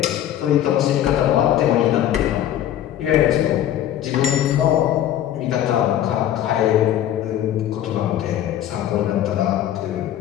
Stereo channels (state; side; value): quieter; right; 11.5 dB